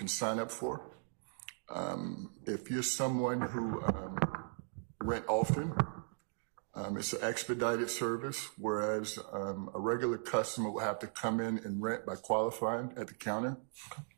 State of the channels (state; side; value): silent; left; digital silence